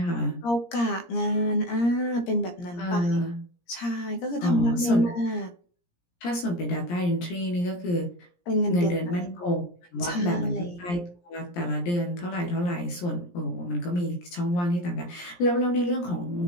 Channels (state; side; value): late; right; 17 ms